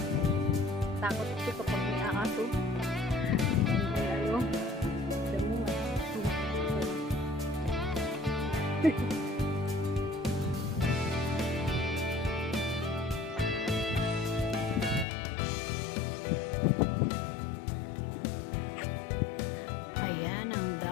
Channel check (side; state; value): right; drops out; at 15.1 s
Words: takot ito kapag may aso. Ano? Damo nga. Ayan ang